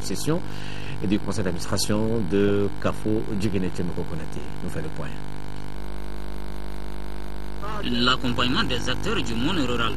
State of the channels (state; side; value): identical; both; correlation 1.00